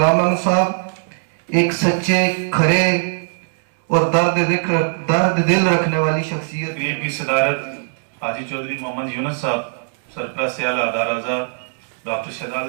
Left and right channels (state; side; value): silent; left; 66 dB below the other